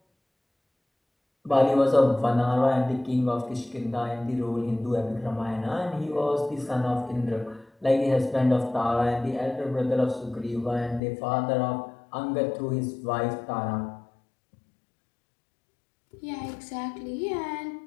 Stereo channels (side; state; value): right; drops out; at 11.0 s